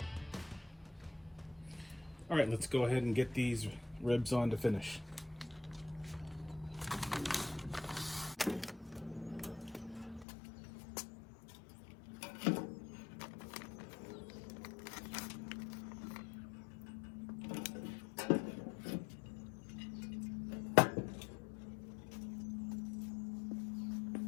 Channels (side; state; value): right; drops out; at 10.2 s